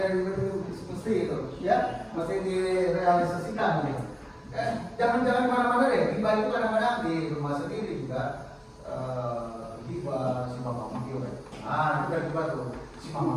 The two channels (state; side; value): identical; both; correlation 1.00